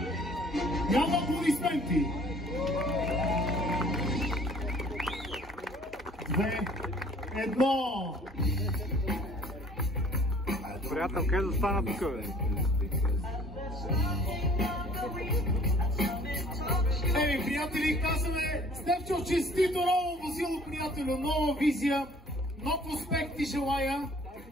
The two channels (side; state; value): both; normal; correlation 0.53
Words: Няма аплодисменти. 2, 1. Приятел, къде да стана тук, бе? Приятели, казваме Стефчо, честито ново возило, приятелю, нова визия, нов успех ти желая,